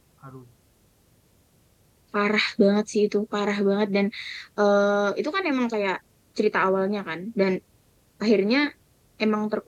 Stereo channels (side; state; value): both; identical; correlation 1.00